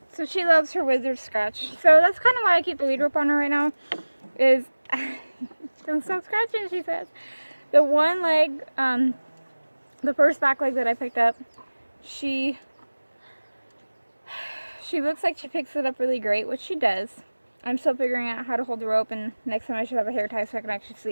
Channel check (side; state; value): both; inverted; correlation -1.00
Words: So she loves her wizard scratch. So that's kind of why I keep the lead rope on her right now. Is don't stop scratching, she says. The one leg, the first back leg that I picked up, she she looks like she picks it up really great, which she does. I'm still figuring out how to hold the rope, and next time I should have a hair tie so I can actually